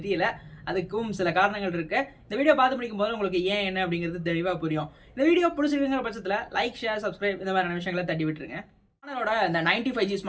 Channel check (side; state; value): both; identical; correlation 1.00